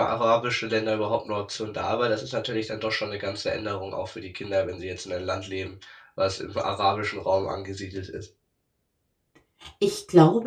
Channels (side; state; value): both; identical; correlation 1.00